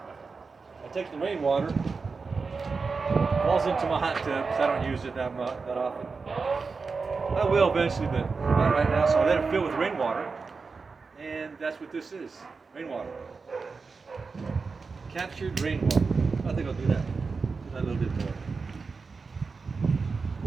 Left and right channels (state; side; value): quieter; left; 4.6 dB